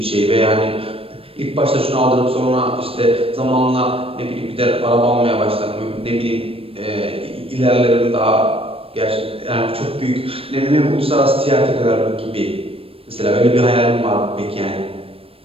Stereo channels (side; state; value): left; late; 0.28 ms